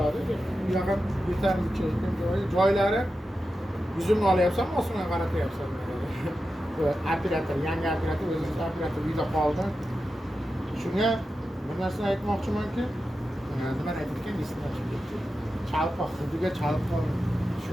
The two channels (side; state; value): both; normal; correlation 0.91